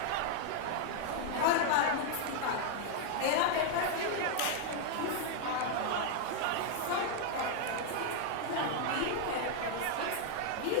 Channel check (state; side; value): different; both; correlation 0.00